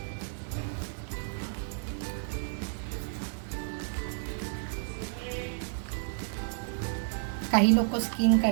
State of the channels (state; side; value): silent; left; 57 dB below the other